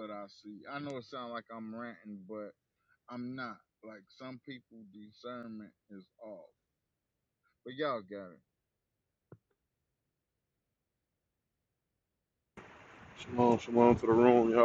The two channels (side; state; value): both; identical; correlation 1.00